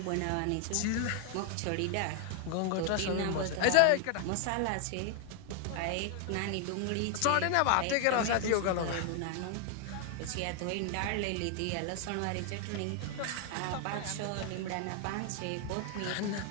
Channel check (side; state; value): both; different; correlation 0.00